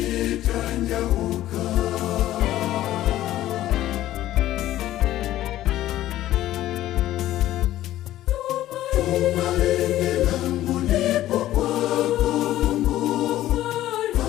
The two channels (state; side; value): quieter; right; 14.0 dB